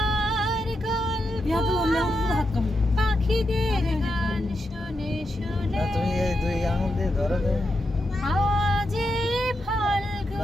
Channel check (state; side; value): normal; both; correlation 0.85